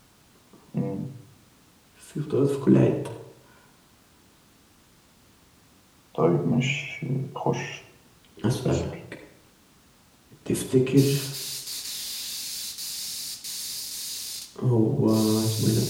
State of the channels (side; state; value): both; identical; correlation 1.00